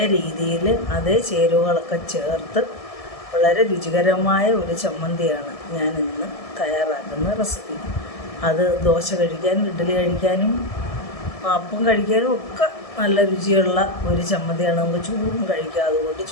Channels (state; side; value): late; right; 1.7 ms